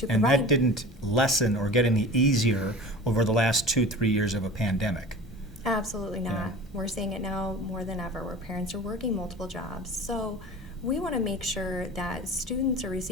and provide, that didn't lessen or get any easier over the last 2-3 years of a pandemic. Absolutely not. Yeah. We're seeing it now more than ever where parents are working multiple jobs. So we want to make sure that students are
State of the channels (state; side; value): normal; both; correlation 0.38